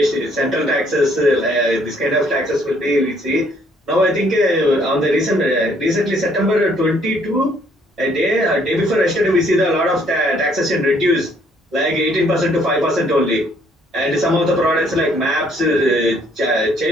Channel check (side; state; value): both; normal; correlation 0.65